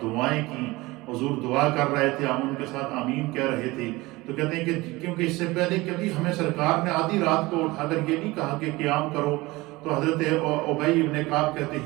دعائیں کی۔ حضور دعا کر رہے تھے، ہم ان کے ساتھ آمین کہہ رہے تھے۔ تو کہتے ہیں کہ کیونکہ اس سے پہلے کبھی ہمیں سرکار نے آدھی رات کو اٹھا کر یہ نہیں کہا کہ قیام کرو، تو حضرت ابی ابن کعب کہتے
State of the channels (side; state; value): left; quieter; 21.2 dB